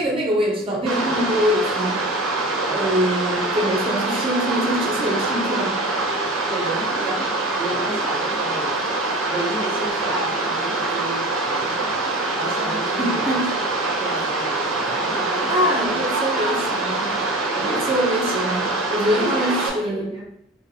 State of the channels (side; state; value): both; normal; correlation 0.33